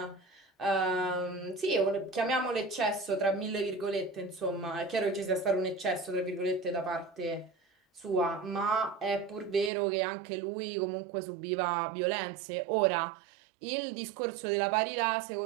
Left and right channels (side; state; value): left; drops out; at 9.7 s